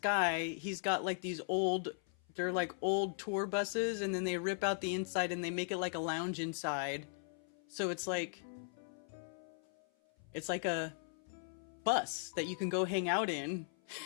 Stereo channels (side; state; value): right; silent; 52 dB below the other